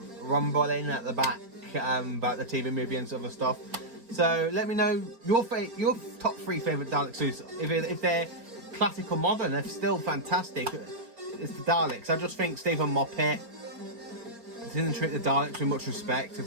rumbling at the back about the TV movie and other stuff. So let me know your top 3 favourite Dalek suits. If they're classic or modern, they're still fantastic. It's the Daleks. I just think Stephen Moffat didn't treat the Daleks with much respect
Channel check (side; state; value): left; late; 4.3 ms